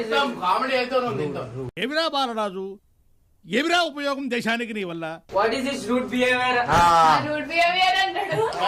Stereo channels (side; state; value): both; identical; correlation 1.00